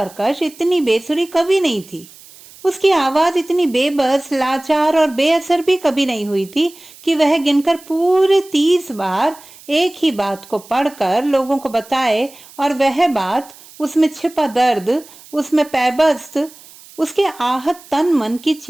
इतनी बेसुरी कभी नहीं थी। उसकी आवाज इतनी बेबस, लाचार और बेअसर भी कभी नहीं हुई थी कि वह गिनकर पूरे 30 बार एक ही बात को पढ़कर लोगों को बताए और वह बात, उसमें छिपा दर्द, उसमें पैबस्त, उसके आहत तन मन की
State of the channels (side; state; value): right; noise; hiss, 22 dB below the sound